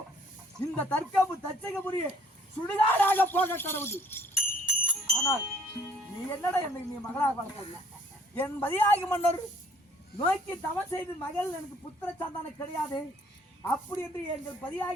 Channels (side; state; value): both; normal; correlation 0.59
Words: இந்த தர்க்கபு தச்சகபுரியே சுடுகாடாக போக கடவுது. ஆனால் நீ என்னடா என்னை நீ மகளாக வளர்க்கல. என் பதியாகி மன்னர் நோக்கி தவம் செய்து மகள் எனக்கு புத்திர சந்தானம் கிடையாது. அப்படி என்று எங்கள்